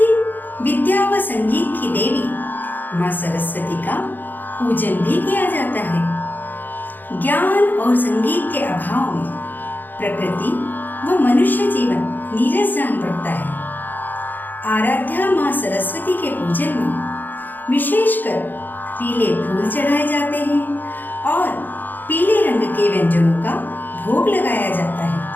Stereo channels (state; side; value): late; right; 0.088 ms